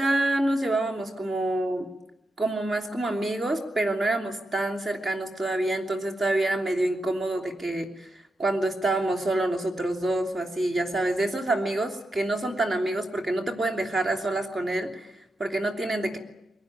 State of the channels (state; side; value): normal; both; correlation 0.87